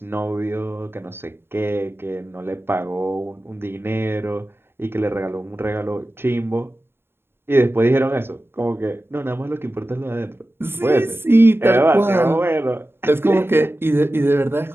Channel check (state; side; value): late; left; 0.11 ms